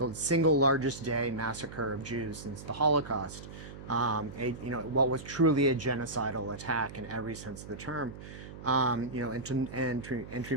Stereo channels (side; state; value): right; noise; hum, 13 dB below the sound